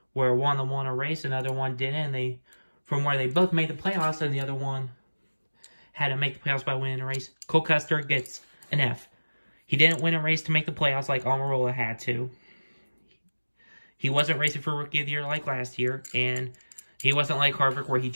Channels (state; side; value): inverted; both; correlation -1.00